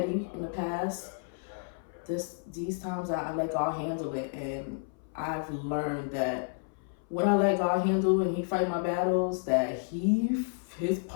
in the past. These times I let God handle it, and I've learned that when I let God handle and He fight my battles, that His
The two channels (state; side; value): silent; right; 57 dB below the other